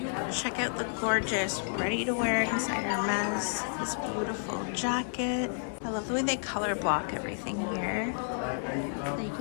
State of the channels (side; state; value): right; silent; digital silence